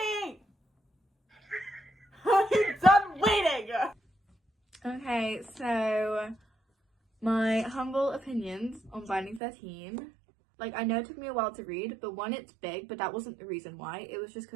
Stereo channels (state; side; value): drops out; left; at 9.4 s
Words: I'm done waiting! okay, so my humble opinions on Binding 13. Like, I know it took me a while to read, but one, it's big, but that wasn't the reason why. It was just